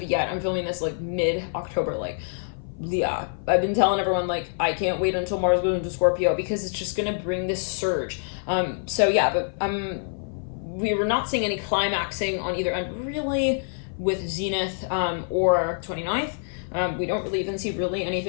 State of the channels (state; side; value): silent; right; 55 dB below the other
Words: yet, I'm filming this like mid-October, like, yeah, I've been telling everyone, like, I can't wait until Mars goes into Scorpio because it's just going to bring this surge. So yeah, but we were not seeing any climaxing on either end, really, with Zenith or 29th. We don't really even see really